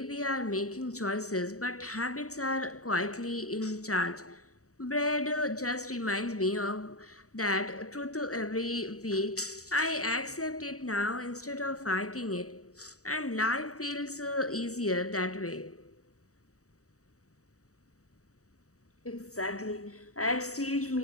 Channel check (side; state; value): right; late; 0.65 ms